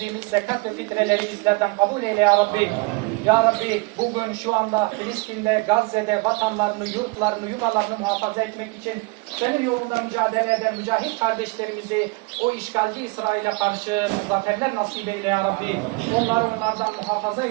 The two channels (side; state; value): left; quieter; 27.8 dB